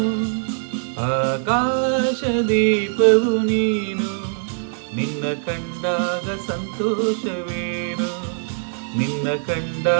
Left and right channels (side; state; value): left; silent; digital silence